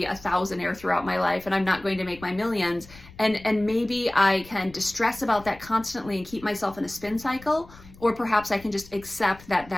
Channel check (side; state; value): left; noise; rumble, 21 dB below the sound